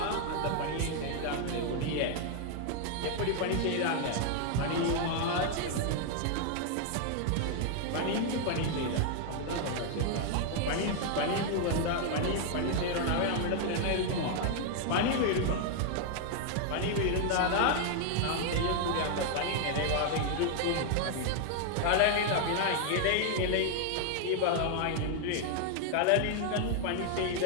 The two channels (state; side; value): different; both; correlation 0.00